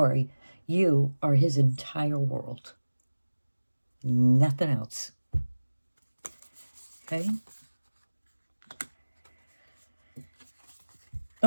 you are his entire world. Nothing else. Okay?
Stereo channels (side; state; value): both; inverted; correlation -1.00